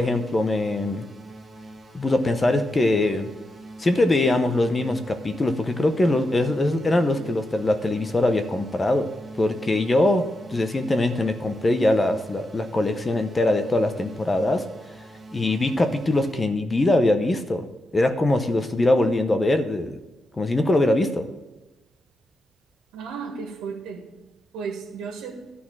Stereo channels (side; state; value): both; normal; correlation 0.87